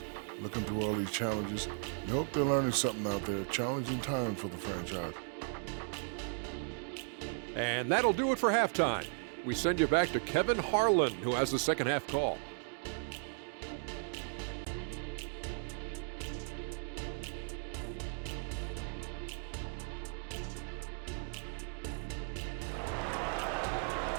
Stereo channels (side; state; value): left; silent; 54 dB below the other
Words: Looking through all these challenges, you hope they're learning something out there. Challenging time for the franchise. And that'll do it for halftime. We send you back to Kevin Harlan, who has the second half call.